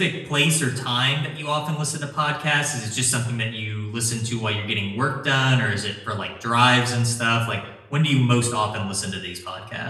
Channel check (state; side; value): identical; both; correlation 1.00